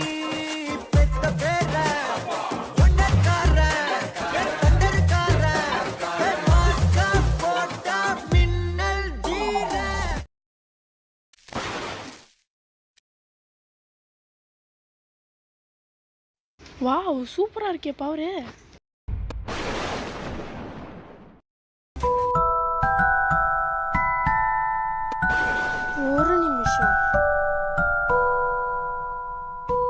வாவ் சூப்பரா இருக்கே பவரு. ஒரு நிமிஷம்.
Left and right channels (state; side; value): identical; both; correlation 1.00